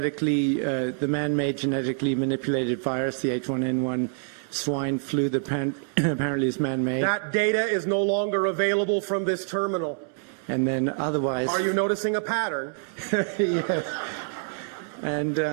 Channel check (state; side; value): silent; left; 61 dB below the other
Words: man-made genetically manipulated virus, the H1N1 swine flu that apparently is man-made? That data is no longer available from this terminal. And then otherwise... Are you noticing a pattern? Yes.